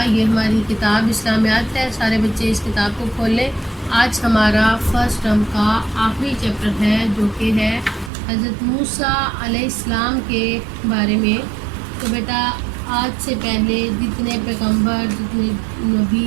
یہ ہماری کتاب اسلامیات ہے، سارے بچے اس کتاب کو کھول لیں۔ آج ہمارا فرسٹ ٹرم کا آخری چیپٹر ہے جو کہ ہے حضرت موسیٰ علیہ السلام کے بارے میں۔ تو بیٹا آج سے پہلے جتنے پیغمبر، جتنے نبی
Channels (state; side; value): drops out; left; at 8.1 s